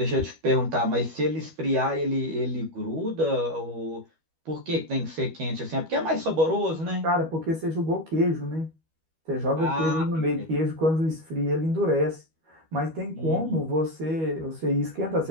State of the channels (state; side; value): late; left; 12 ms